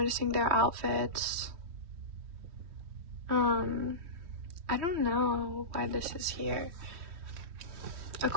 their outfits. I don't know why this is here.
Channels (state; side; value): late; left; 3.1 ms